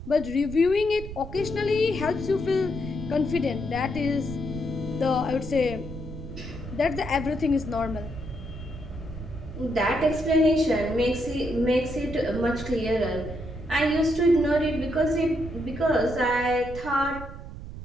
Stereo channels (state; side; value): noise; right; rumble, 11 dB below the sound